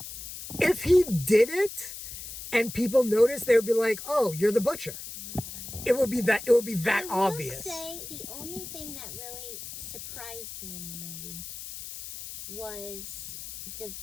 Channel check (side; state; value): left; noise; hiss, 10 dB below the sound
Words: if he did it and people noticed, they would be like, "Oh, you're the butcher." It would be that obvious. I will say the only thing that really surprised me in the movie was